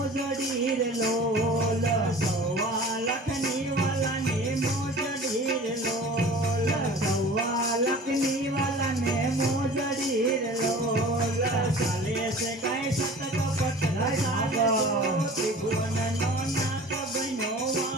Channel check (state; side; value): normal; both; correlation 0.42